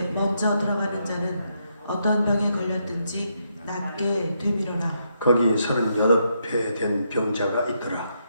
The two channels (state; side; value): inverted; both; correlation -0.78